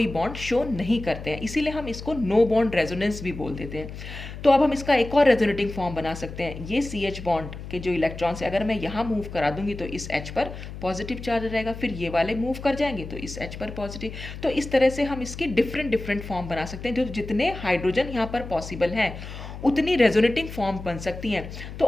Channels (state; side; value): noise; left; hum, 11 dB below the sound